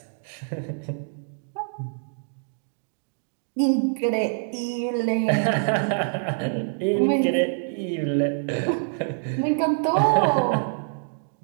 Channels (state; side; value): silent; left; digital silence